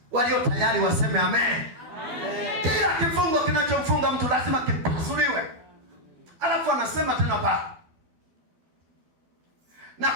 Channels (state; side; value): late; left; 12 ms